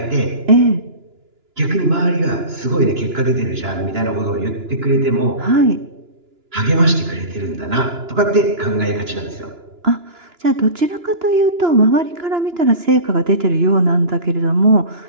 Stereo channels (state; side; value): late; left; 2.9 ms